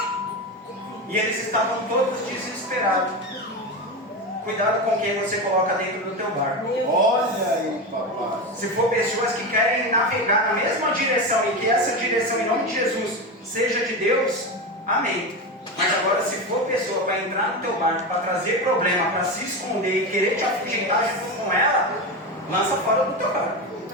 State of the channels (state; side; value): normal; both; correlation 0.19